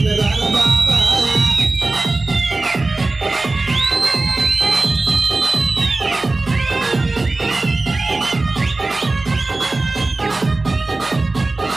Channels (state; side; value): quieter; left; 3.2 dB